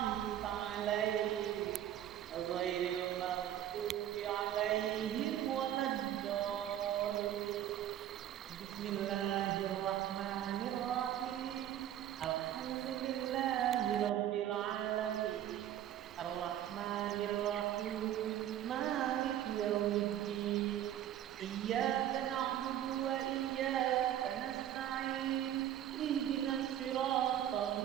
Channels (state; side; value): quieter; left; 11.4 dB